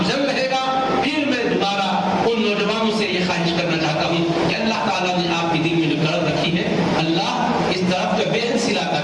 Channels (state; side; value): identical; both; correlation 1.00